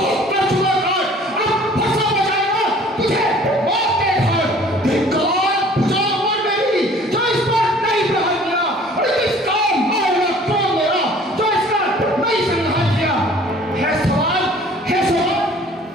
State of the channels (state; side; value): normal; both; correlation 0.51